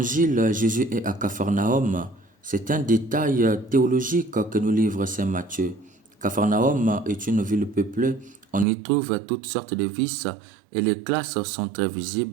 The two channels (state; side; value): drops out; left; at 8.7 s